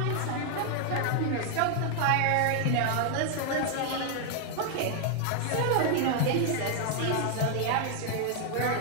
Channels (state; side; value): different; both; correlation 0.00